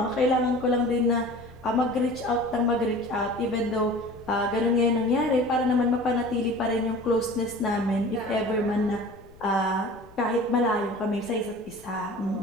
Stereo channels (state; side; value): noise; left; rumble, 25 dB below the sound